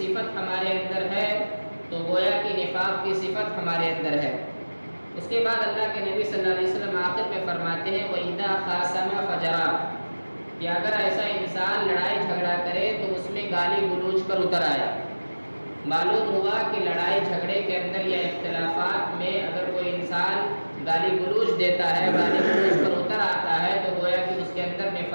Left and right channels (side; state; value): both; inverted; correlation -1.00